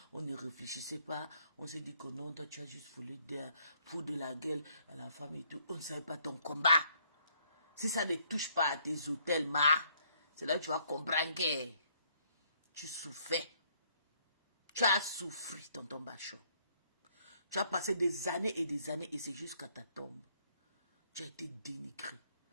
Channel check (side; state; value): both; inverted; correlation -0.67